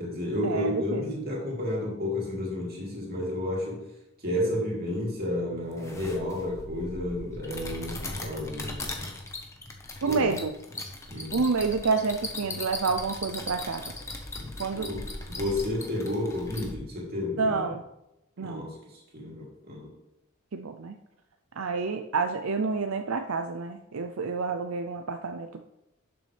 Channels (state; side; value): normal; both; correlation 0.04